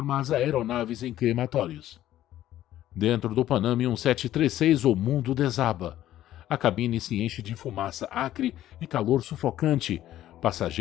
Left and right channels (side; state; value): right; quieter; 13.2 dB